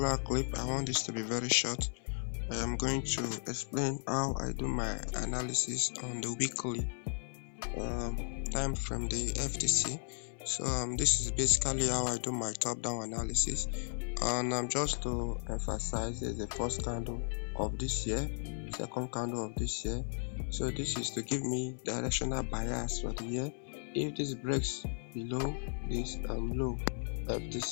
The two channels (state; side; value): silent; right; 54 dB below the other